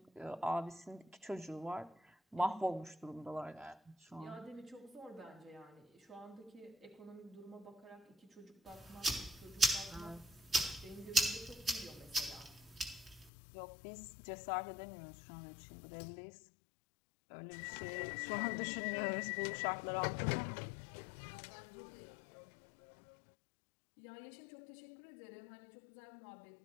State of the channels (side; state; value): right; drops out; at 13.3 s